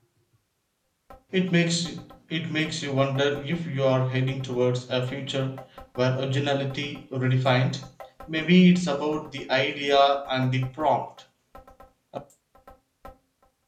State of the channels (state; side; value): identical; both; correlation 1.00